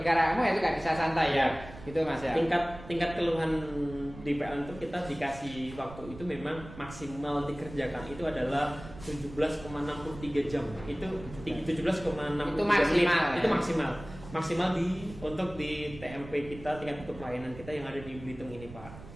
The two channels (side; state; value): right; noise; rumble, 15 dB below the sound